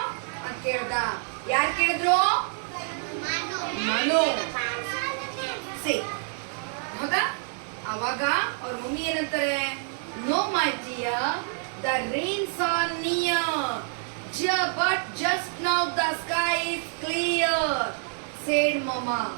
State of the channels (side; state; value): left; silent; 60 dB below the other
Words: ಅಂತ ಕೇಳ್ದ. ಯಾರು ಕೇಳಿದ್ರು? ಮನು. ಸಿ, ಹೌದಾ? ಅವಾಗ ಅವ್ರ ಮಮ್ಮಿ ಏನಂತಾರೆ, no my dear, the rains are near, but just now the sky is clear said mamma.